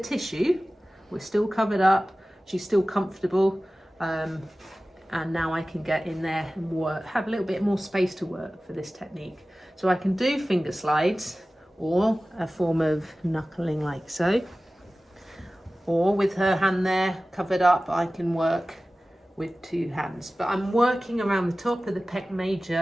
we're still covered up. She's still comfortable. And now I can get in there and work, have a little bit more space to work for this technique. So I can do finger slides or a form of knuckling like so. Or with her hand there covered up, I can work with 2 hands. But I'm working around the top of the pec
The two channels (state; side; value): normal; both; correlation 0.96